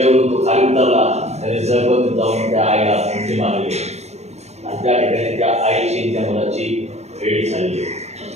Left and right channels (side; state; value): left; late; 0.32 ms